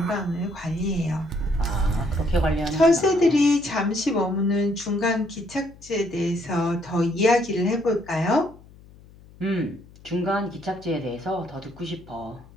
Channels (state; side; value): noise; left; hum, 23 dB below the sound